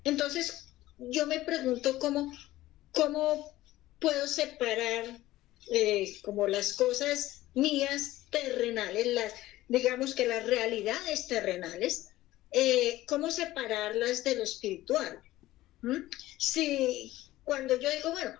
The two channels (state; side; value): quieter; right; 16.1 dB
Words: Entonces, yo me pregunto cómo puedo separar como las cosas mías terrenales, digamos que las realidades terrenales, cómo separarlas de lo espiritual. Si cuando yo digo, bueno,